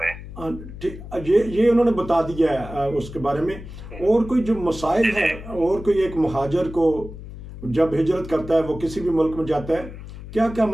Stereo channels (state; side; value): noise; left; hum, 13 dB below the sound